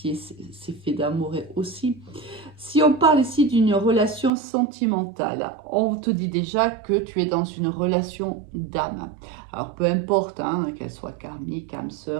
c'est fait d'amour aussi. Si on parle ici d'une relation sentimentale, on te dit déjà que tu es dans une relation d'âme. Alors, peu importe, hein, qu'elle soit karmique, âme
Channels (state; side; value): drops out; left; at 4.3 s